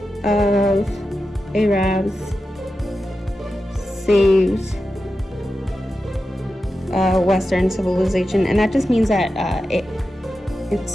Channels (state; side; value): normal; both; correlation 0.91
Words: of Arabs saved Western civilization, and that just means that it's